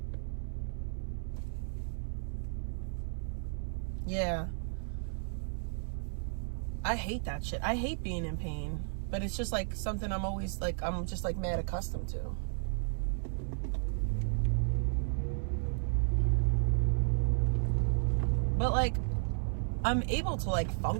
Yeah. I hate that shit. I hate being in pain. But it's just like something I'm always like, I'm just like mad accustomed to. But like, I'm able to like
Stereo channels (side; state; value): left; silent; 55 dB below the other